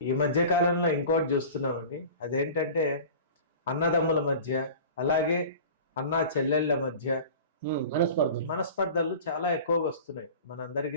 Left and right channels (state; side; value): inverted; both; correlation -0.39